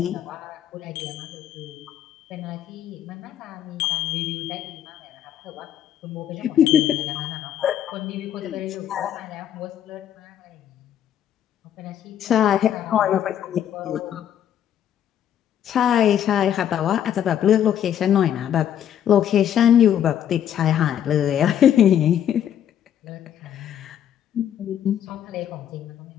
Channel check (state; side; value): quieter; right; 10.1 dB